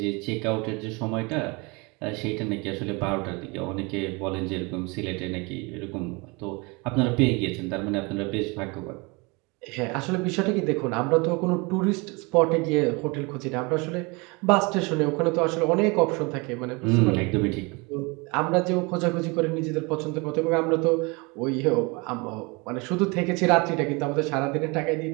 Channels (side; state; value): left; quieter; 27.9 dB